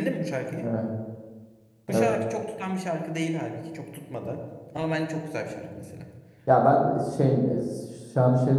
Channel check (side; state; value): both; identical; correlation 1.00